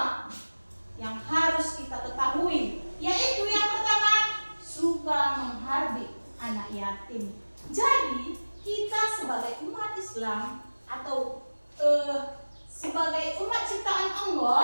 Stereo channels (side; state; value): both; inverted; correlation -1.00